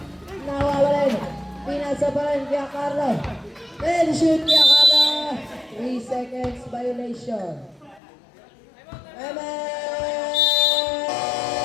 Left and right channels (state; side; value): drops out; right; at 8.0 s